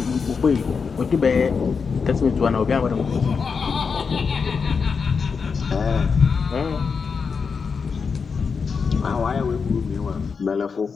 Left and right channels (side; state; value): right; quieter; 5.5 dB